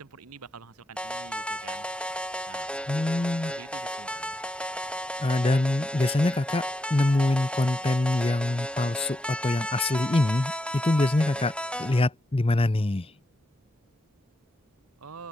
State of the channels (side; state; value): both; normal; correlation 0.84